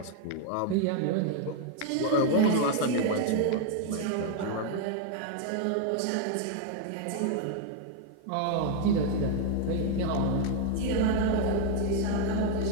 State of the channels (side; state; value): both; different; correlation 0.00